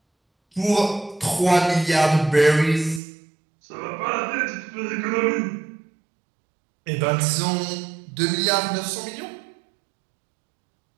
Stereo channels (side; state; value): left; drops out; at 3.0 s